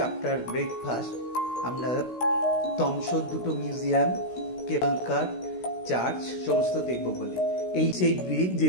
আফটার ব্রেকফাস্ট। আমরা তমসর দুটো মিউজিয়াম, কেবল কার, চার্চ সমস্ত দেখব বলে। এই সেই ব্রিজ, যে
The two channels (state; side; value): late; right; 16 ms